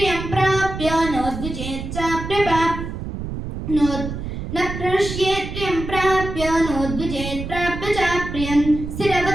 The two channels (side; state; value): right; noise; rumble, 7 dB below the sound